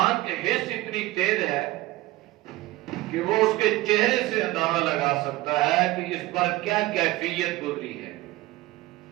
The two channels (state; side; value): quieter; left; 18.1 dB